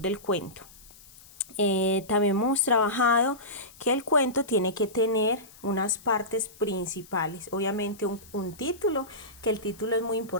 del cuento. También hemos trabajado que el cuento tiene que tener unas partes principales, obviamente un título, que el título es muy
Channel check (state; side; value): noise; left; hiss, 22 dB below the sound